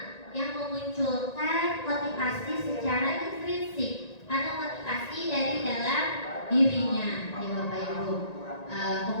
yang memunculkan motivasi secara intrinsik atau motivasi dari dalam dirinya, ya Bapak Ibu.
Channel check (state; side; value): late; right; 1.9 ms